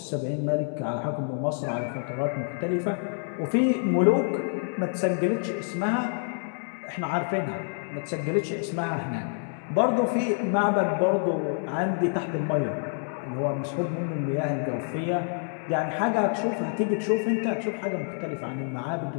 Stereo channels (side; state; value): right; silent; 57 dB below the other